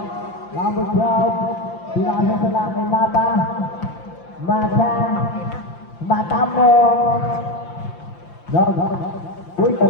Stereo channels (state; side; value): late; right; 5.8 ms